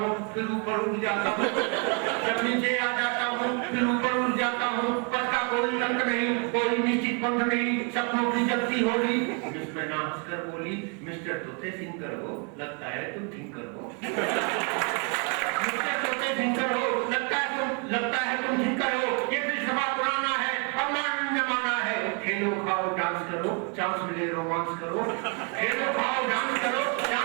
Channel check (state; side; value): quieter; left; 37.1 dB